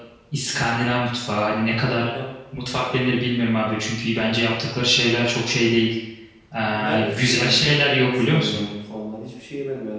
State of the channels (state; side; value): identical; both; correlation 1.00